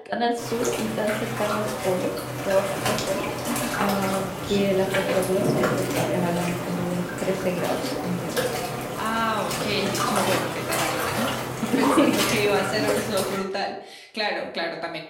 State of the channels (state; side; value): identical; both; correlation 1.00